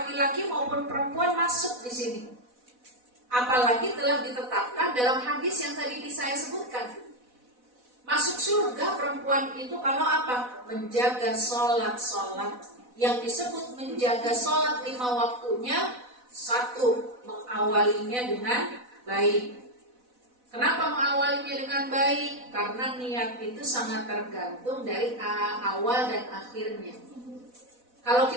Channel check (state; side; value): late; left; 4.0 ms